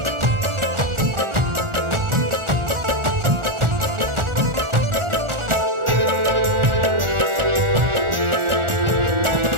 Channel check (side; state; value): left; late; 1.4 ms